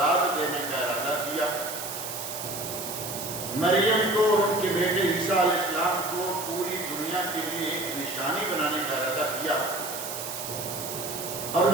دینے کا ارادہ کیا، مریم کو اور ان کے بیٹے عیسیٰ علیہ السلام کو پوری دنیا کے لیے ایک نشانی بنانے کا ارادہ کیا، اور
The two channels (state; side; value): noise; right; hiss, 7 dB below the sound